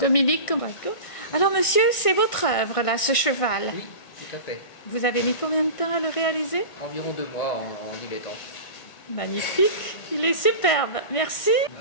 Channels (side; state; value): right; late; 1.6 ms